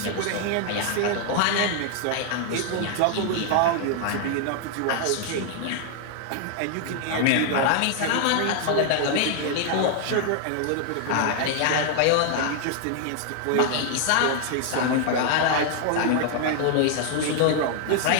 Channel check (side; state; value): both; different; correlation 0.00